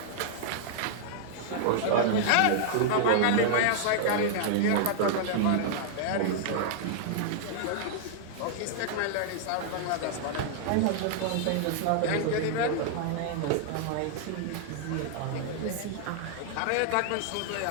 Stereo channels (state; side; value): different; both; correlation -0.01